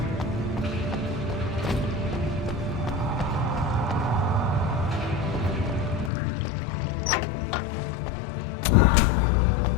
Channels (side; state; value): right; drops out; at 6.1 s